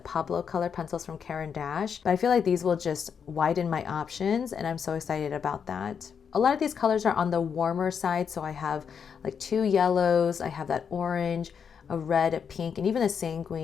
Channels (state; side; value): quieter; right; 6.9 dB